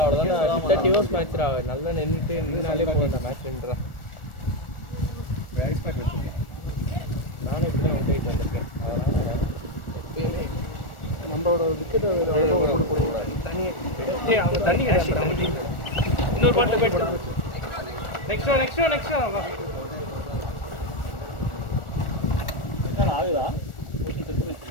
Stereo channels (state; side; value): late; right; 1.4 ms